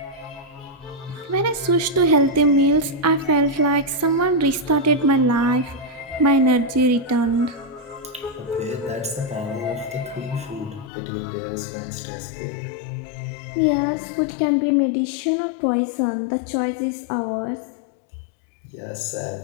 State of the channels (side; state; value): right; drops out; at 10.9 s